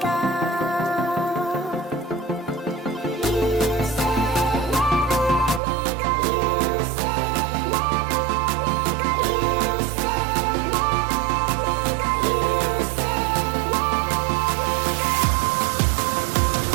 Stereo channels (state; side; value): drops out; left; at 5.6 s